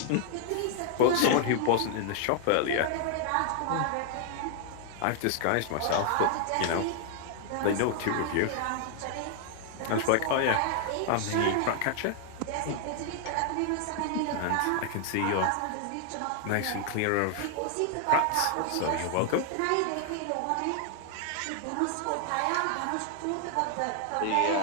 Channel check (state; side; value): different; both; correlation 0.00